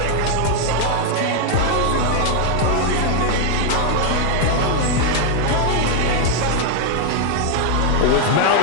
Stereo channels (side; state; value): both; different; correlation 0.00